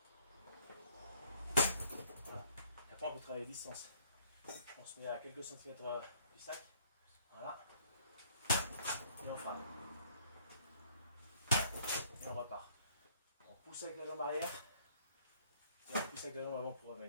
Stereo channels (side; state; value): both; inverted; correlation -0.61